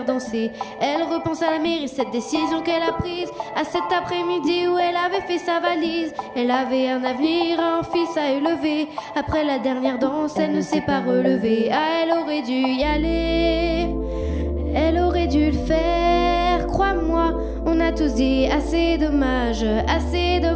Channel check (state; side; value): identical; both; correlation 1.00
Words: danser. Elle repense à la mairie, cette décision qu'elle a prise, à cet après-midi où elle avait fait sa valise. Elle avait un avenir, un fils à élever. Après la dernière danse, elle ne s'est pas relevée. Ah, elle aurait dû y aller, elle aurait dû le faire, crois-moi. On a tous dit assez dommage,